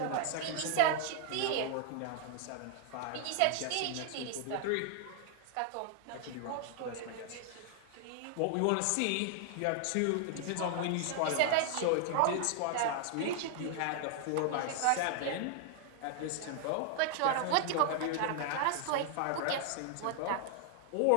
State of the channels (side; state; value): both; different; correlation 0.00